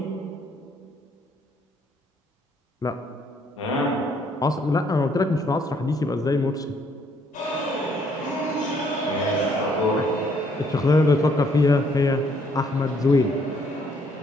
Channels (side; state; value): both; normal; correlation 0.67